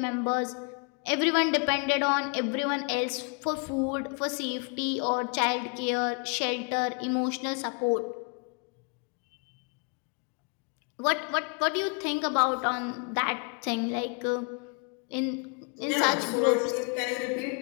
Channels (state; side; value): quieter; right; 36.9 dB